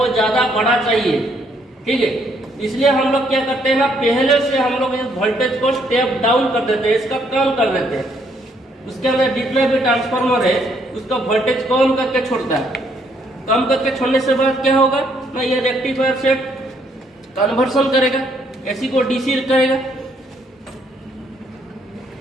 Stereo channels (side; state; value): both; normal; correlation 0.69